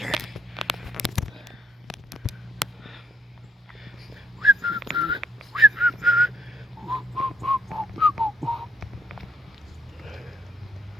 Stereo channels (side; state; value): both; normal; correlation 0.74